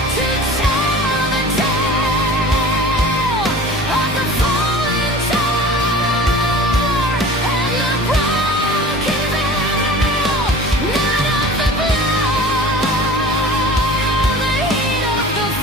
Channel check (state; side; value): normal; both; correlation 0.41